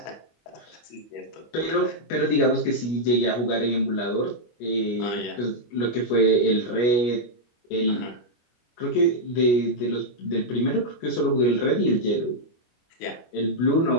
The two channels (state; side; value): late; right; 25 ms